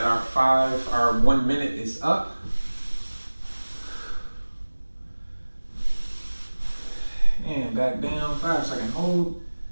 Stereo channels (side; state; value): both; inverted; correlation -1.00